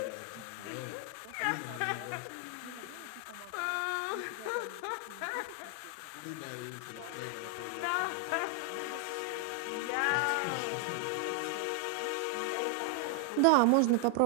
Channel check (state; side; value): different; both; correlation 0.00